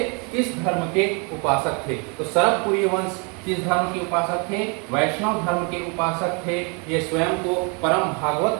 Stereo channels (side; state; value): left; quieter; 33.9 dB